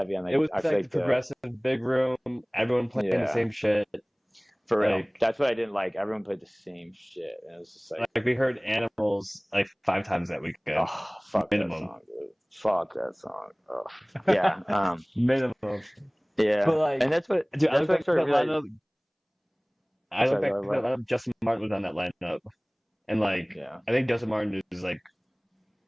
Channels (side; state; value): both; identical; correlation 1.00